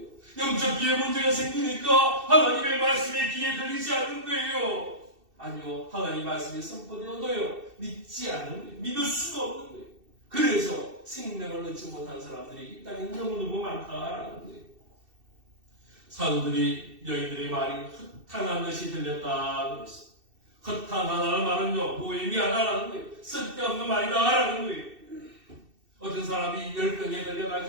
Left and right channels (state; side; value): late; left; 2.7 ms